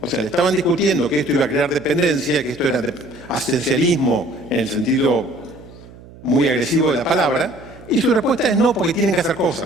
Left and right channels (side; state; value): right; noise; hum, 20 dB below the sound